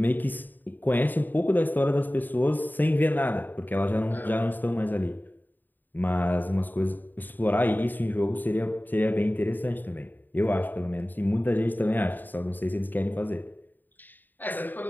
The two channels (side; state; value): right; late; 0.089 ms